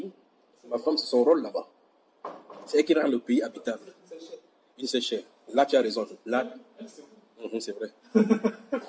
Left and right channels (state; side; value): identical; both; correlation 1.00